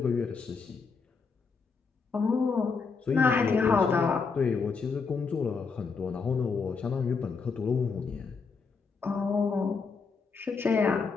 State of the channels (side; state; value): right; quieter; 5.0 dB